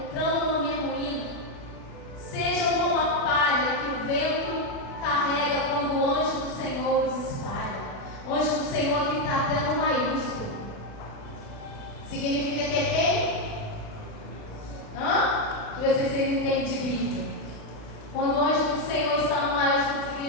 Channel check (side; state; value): right; late; 36 ms